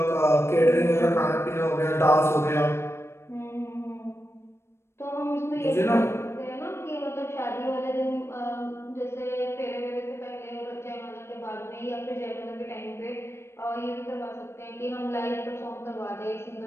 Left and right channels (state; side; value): late; right; 0.12 ms